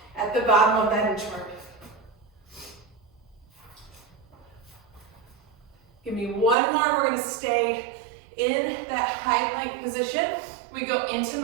at the bottom of that inchworm. Give me one more. We're going to stay in that high plank position. We go into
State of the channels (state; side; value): drops out; left; at 6.6 s